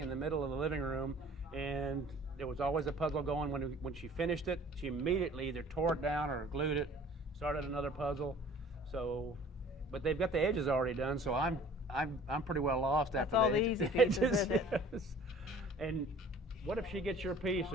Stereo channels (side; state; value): both; normal; correlation 0.50